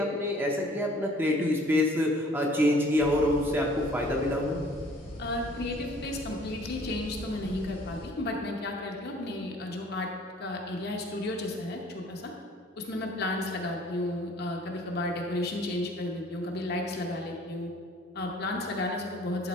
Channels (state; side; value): normal; both; correlation 0.54